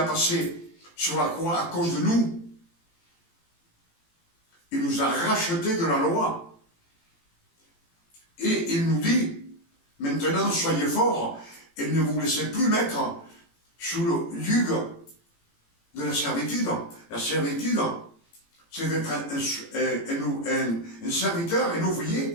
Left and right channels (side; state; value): right; late; 18 ms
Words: passées sur la croix à cause de nous. Il nous a rachetés de la loi. Et il nous dit, maintenant soyez forts et ne vous laissez plus mettre sous le yugo de la servitude. La servitude, c'est d'être un serviteur, un